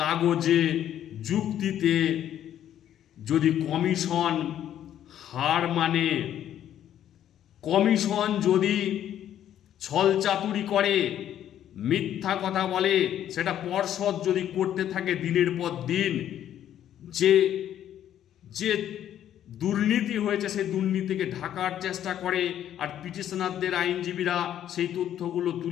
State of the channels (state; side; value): quieter; right; 10.9 dB